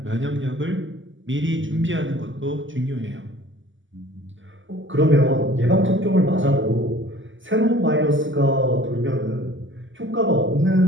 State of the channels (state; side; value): late; left; 0.55 ms